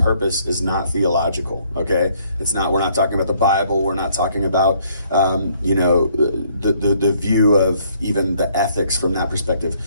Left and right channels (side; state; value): both; inverted; correlation -0.65